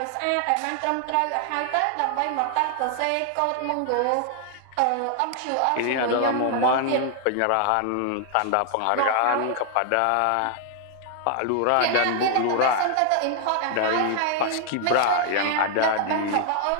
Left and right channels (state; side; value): different; both; correlation 0.00